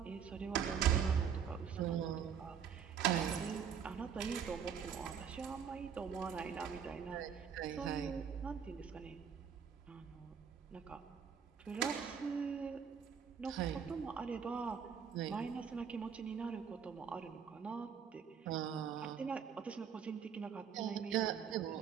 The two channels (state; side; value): quieter; left; 7.5 dB